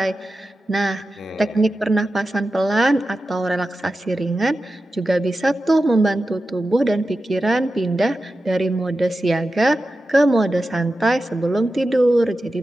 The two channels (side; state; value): both; normal; correlation 0.92